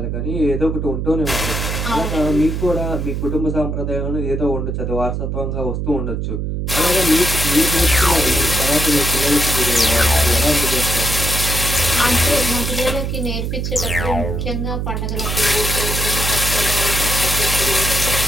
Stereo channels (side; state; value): right; noise; hum, 2 dB below the sound